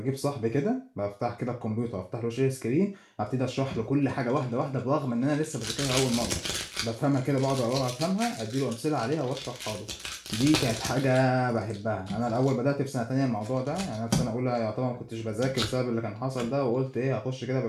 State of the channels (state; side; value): identical; both; correlation 1.00